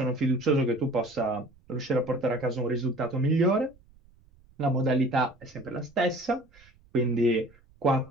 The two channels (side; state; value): right; noise; rumble, 28 dB below the sound